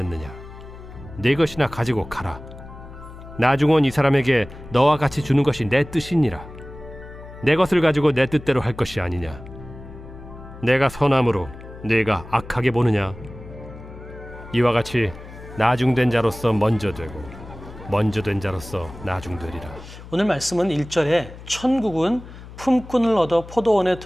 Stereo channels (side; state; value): left; noise; hum, 16 dB below the sound